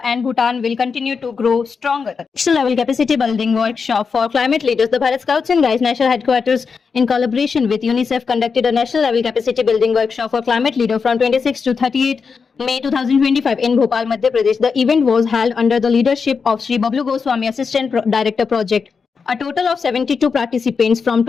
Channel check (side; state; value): right; quieter; 5.4 dB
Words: and Bhutan will continue to grow stronger. National level capacity building workshop for climate leaders. The Bharat Scouts and Guides National Headquarters, in collaboration with UNICEF, conducted a national level capacity building workshop for climate leaders from 26 to 38 May 2025 in Bhopal, Madhya Pradesh. The event was held under the leadership of Shri Bablu Goswami, Assistant Director Project. A total of 72 participants from